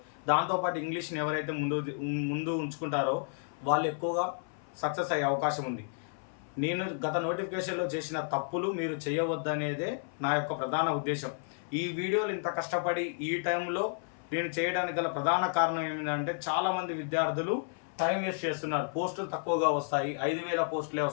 దాంతోపాటు ఇంగ్లీష్ని ఎవరైతే ముందు ఉంచుకుంటారో వాళ్ళు ఎక్కువగా సక్సెస్ అయ్యే అవకాశం ఉంది. నేను గత నోటిఫికేషన్లో చేసిన తప్పులు మీరు చేయవద్దనేదే నా యొక్క ప్రధాన ఉద్దేశం. ఈ వీడియోలు ఇంత కష్టపడి ఈ టైంలో నేను చేయడానికి గల ప్రధాన కారణం ఏమిటంటే చాలామంది విద్యార్థులు టైం వేస్ట్ చేస్తున్నారు. పోస్టులు తక్కువగా వస్తాయి, 5,000 పోస్టులే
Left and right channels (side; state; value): right; silent; 57 dB below the other